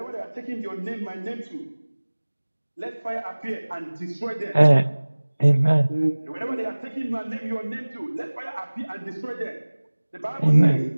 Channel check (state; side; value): inverted; both; correlation -1.00